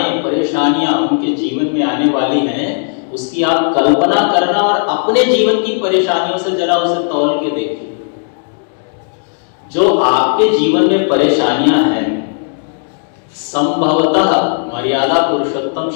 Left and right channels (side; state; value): right; silent; 60 dB below the other